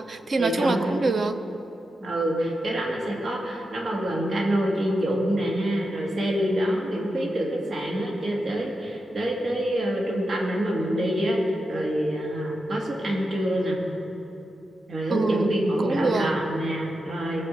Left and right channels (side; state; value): both; normal; correlation 0.88